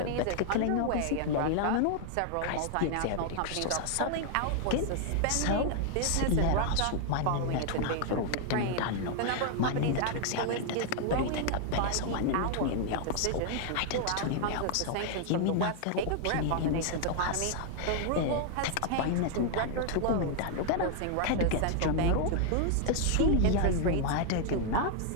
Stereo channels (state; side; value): different; both; correlation 0.00